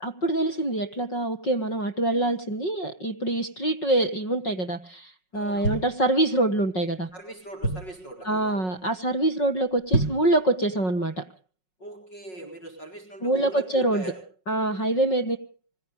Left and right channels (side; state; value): right; late; 5.4 ms